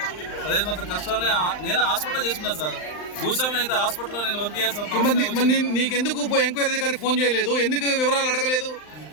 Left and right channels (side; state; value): right; late; 39 ms